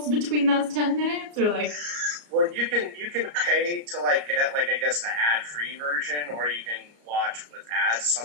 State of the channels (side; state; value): left; late; 34 ms